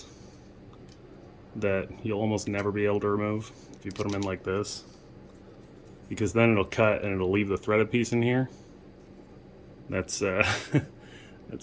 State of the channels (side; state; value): both; identical; correlation 1.00